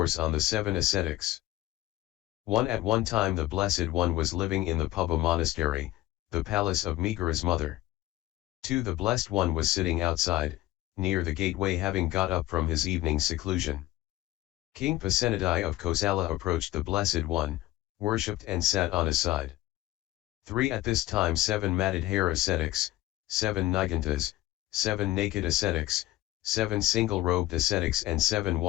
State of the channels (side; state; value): right; quieter; 16.3 dB